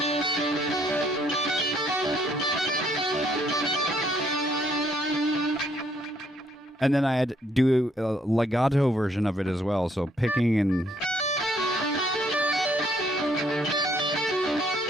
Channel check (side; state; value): both; normal; correlation 0.68